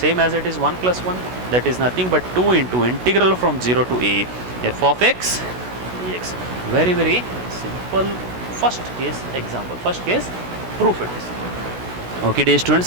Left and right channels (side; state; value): left; late; 16 ms